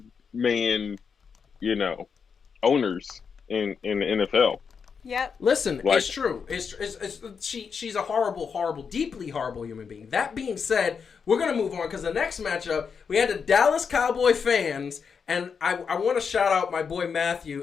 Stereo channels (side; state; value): right; quieter; 6.1 dB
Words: owners in the NFL. Yep. Listen, it's true. She's a horrible, deeply horrible human being. That being said, we're going to move on because the next matchup, we had the Dallas Cowboy fans, and I want to shout out my boy